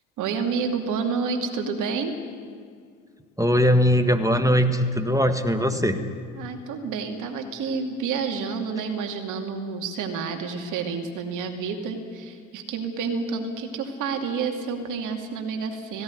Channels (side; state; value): both; normal; correlation 0.49